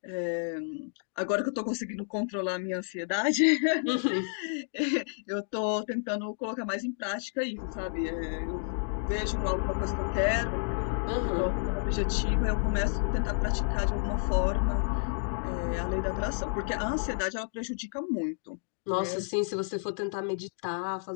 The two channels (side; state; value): right; silent; digital silence